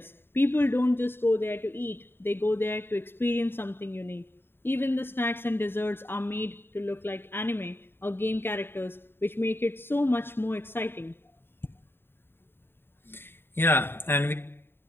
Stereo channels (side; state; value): right; late; 0.11 ms